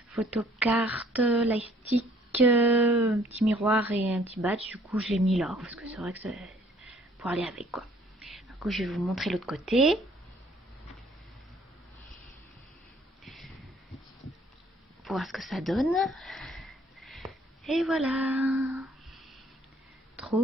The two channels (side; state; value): both; normal; correlation 0.60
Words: photocarte, lightstick, petit miroir et un petit badge. Du coup, je l'ai mis là parce que c'est vrai que c'est pour aller avec quoi. Du coup, je vais vous montrer l'autre côté. Pour voir ce que ça donne. Et voilà.